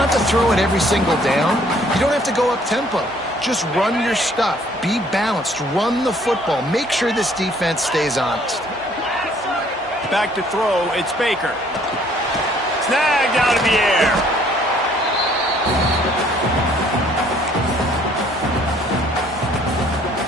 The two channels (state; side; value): normal; both; correlation 0.61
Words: to throw it every single down. You don't have to go up tempo. Just run your stuff. Be balanced. Run the football. Make sure this defense stays honest. Back to throw. It's Baker. Snagged out of the air.